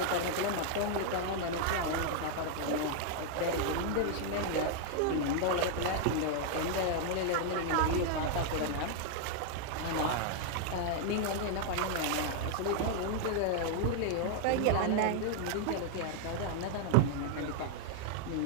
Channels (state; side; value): different; both; correlation 0.00